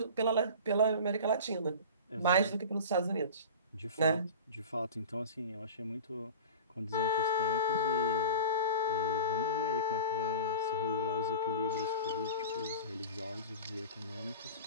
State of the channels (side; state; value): both; inverted; correlation -0.34